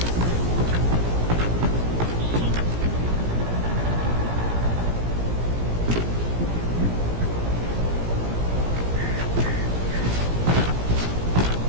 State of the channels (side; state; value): left; late; 17 ms